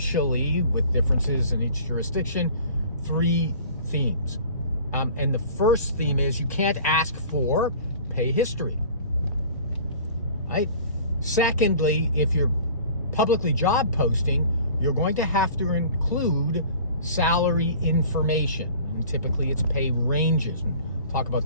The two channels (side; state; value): both; inverted; correlation -0.46